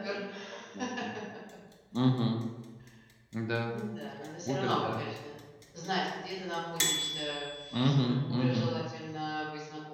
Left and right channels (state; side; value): identical; both; correlation 1.00